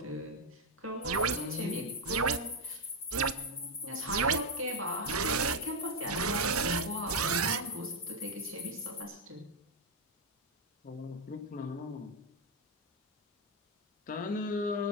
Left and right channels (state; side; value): normal; both; correlation 0.03